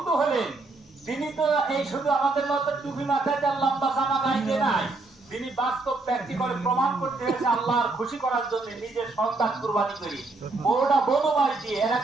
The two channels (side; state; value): left; quieter; 3.4 dB